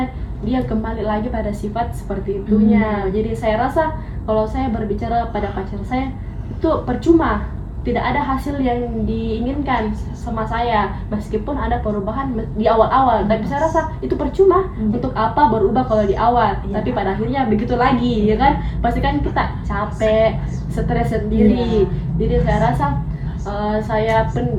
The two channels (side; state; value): both; identical; correlation 1.00